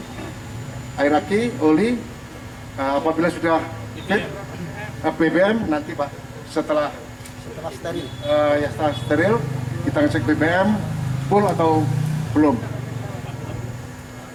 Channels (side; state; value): both; identical; correlation 1.00